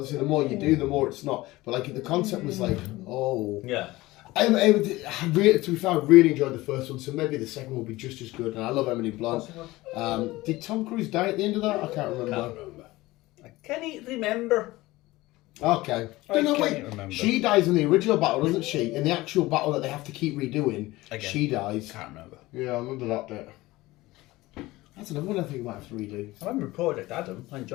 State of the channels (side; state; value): right; quieter; 19.1 dB